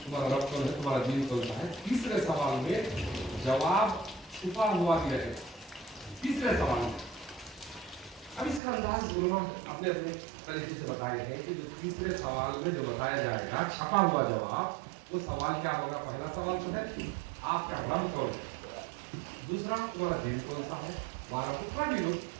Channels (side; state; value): left; drops out; at 8.6 s